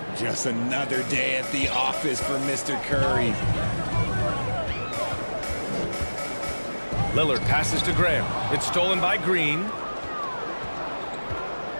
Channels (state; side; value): inverted; both; correlation -1.00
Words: Just another day at the office for Mr. Curry. Lillard passes to Graham. It's stolen by Green.